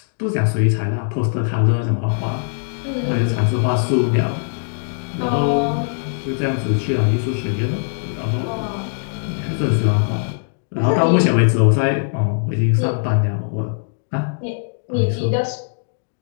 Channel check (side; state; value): right; silent; digital silence